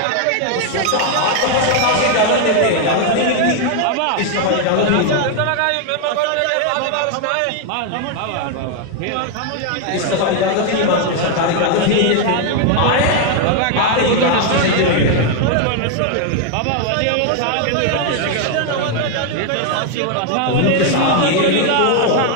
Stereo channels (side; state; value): both; different; correlation 0.01